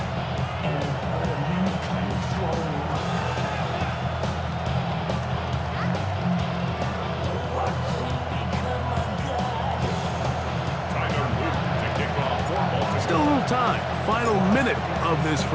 Still a little time. Final minute of this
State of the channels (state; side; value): identical; both; correlation 1.00